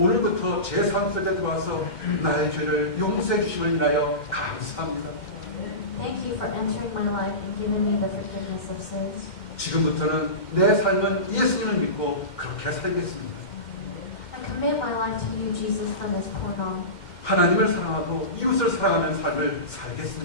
제 삶 속에 들어와서 나의 죄를 용서해 주심을 인하여 감사합니다. Thank you for entering my life and giving me the forgiveness of sins. 지금부터는 내 삶은 예수님을 믿고 그렇게 살겠습니다. I commit my life to you, Jesus, from this point on. 하나님을 사랑하고 이웃을 사랑하는 삶을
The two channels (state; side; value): late; right; 2.1 ms